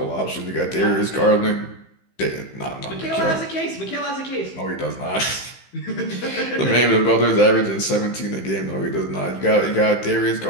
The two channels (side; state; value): right; late; 15 ms